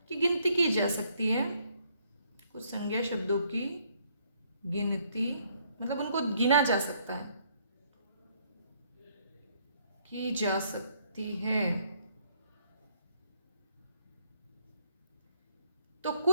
की गिनती की जा सकती है। कुछ संज्ञा शब्दों की गिनती मतलब उनको गिना जा सकता है, की जा सकती है। तो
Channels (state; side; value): inverted; both; correlation -0.68